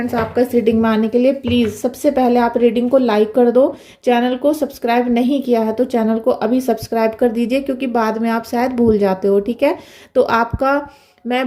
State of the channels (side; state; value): both; identical; correlation 1.00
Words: आपका इस रीडिंग में आने के लिए। प्लीज़ सबसे पहले आप रीडिंग को लाइक कर दो। चैनल को सब्सक्राइब नहीं किया है तो चैनल को अभी सब्सक्राइब कर दीजिए, क्योंकि बाद में आप शायद भूल जाते हो। ठीक है, तो आपका